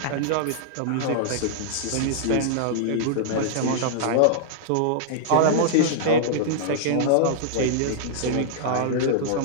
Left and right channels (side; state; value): both; different; correlation -0.01